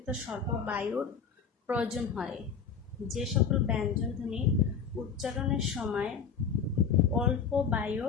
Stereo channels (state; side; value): quieter; right; 6.5 dB